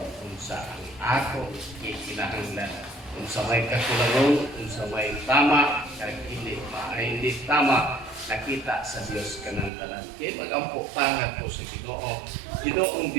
kung sa ang ako kinahanglan kung sa may kakulangon kung sa may tama kag hindi tama nakita sa Dios kanang tanan kay magampo tangat ko sa Ginoo Ginoong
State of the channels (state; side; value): drops out; left; at 9.7 s